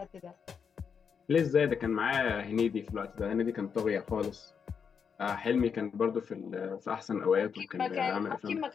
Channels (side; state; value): right; quieter; 6.6 dB